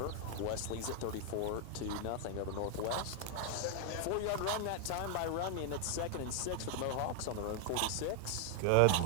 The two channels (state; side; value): different; both; correlation 0.00